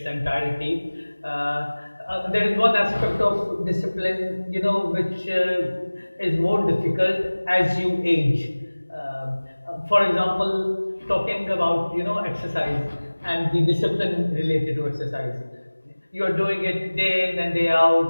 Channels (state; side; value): inverted; both; correlation -1.00